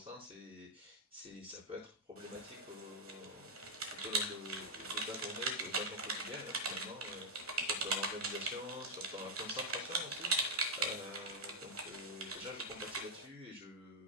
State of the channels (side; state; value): both; normal; correlation 0.00